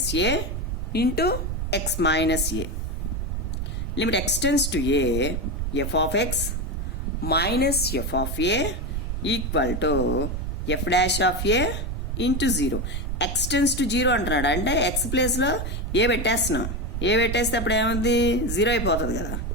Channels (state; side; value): noise; right; rumble, 3 dB below the sound